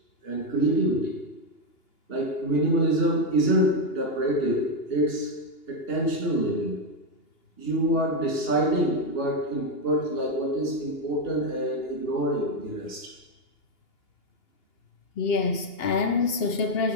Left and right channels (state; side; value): late; right; 2.8 ms